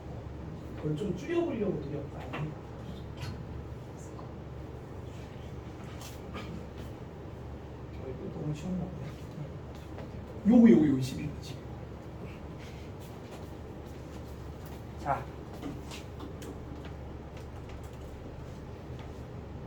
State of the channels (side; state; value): both; identical; correlation 1.00